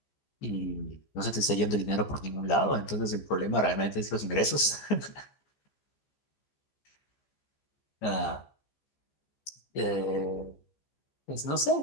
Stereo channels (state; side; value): late; right; 14 ms